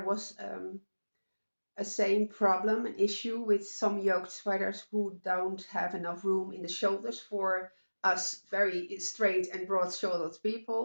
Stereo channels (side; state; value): both; inverted; correlation -1.00